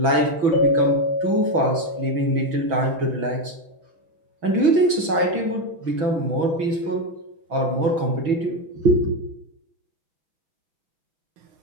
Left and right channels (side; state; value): left; late; 6.1 ms